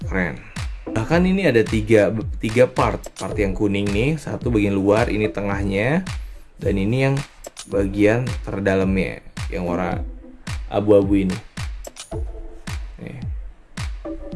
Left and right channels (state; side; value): identical; both; correlation 1.00